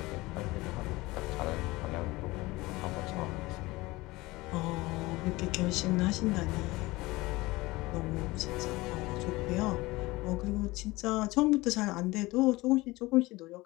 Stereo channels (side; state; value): right; quieter; 20.9 dB